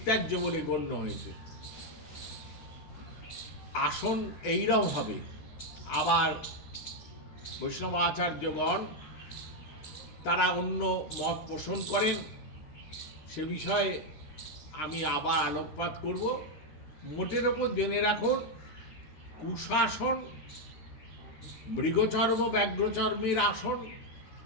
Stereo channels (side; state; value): right; late; 13 ms